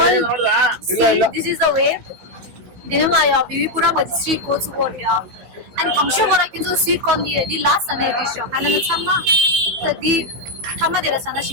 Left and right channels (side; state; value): left; late; 16 ms